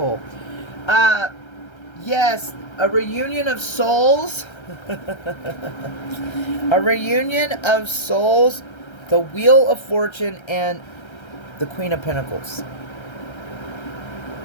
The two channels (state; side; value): late; right; 1.3 ms